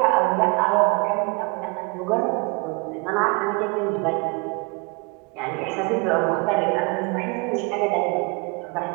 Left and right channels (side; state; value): left; quieter; 30.3 dB